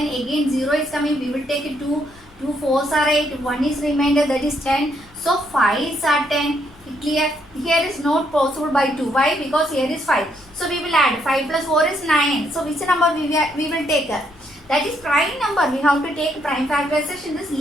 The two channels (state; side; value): noise; left; rumble, 26 dB below the sound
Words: again 0 is coming. We will take 2. 2 4s are 8. 1 is remainder, that is 10. So 5s are 10. Clear? Here is not possible by 2. Why? Because here is 5. So we will add 5 plus 4 is 9. So which number we will take? That is prime number. We have to take prime factorization. This